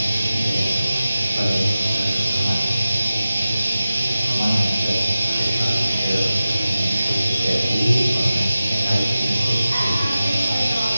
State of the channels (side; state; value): both; inverted; correlation -0.94